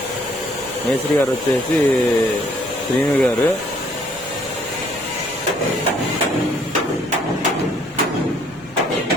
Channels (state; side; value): noise; left; rumble, 23 dB below the sound